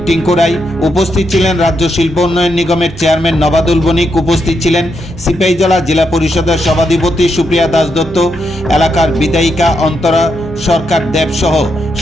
টিঙ্কু রায়, উপস্থিত ছিলেন রাজ্য শিল্প উন্নয়ন নিগমের চেয়ারম্যান নবাদুল বণিক, উপস্থিত ছিলেন সিপাহীজলা জেলা পরিষদের সভাধিপতি সুপ্রিয়া দাস দত্ত, এলাকার বিধায়িকা অন্তরা সরকার দেব সহ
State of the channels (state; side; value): normal; both; correlation 0.81